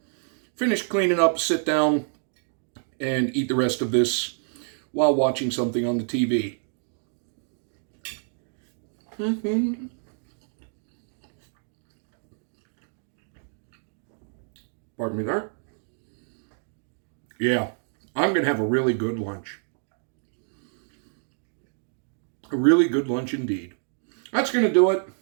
finish cleaning up, sit down, and eat the rest of this while watching something on the TV. Pardon me there. Yeah, I'm going to have a really good lunch. A really good lunch indeed. That's going to do it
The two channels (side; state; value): left; silent; digital silence